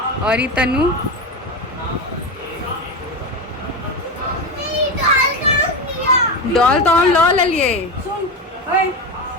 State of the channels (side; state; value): both; normal; correlation 0.18